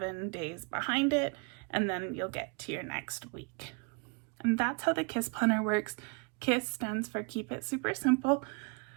days behind it, and then you'll get to your next week. And that's how the KISS planner works. KISS stands for Keep It Super Simple.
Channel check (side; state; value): left; quieter; 33.9 dB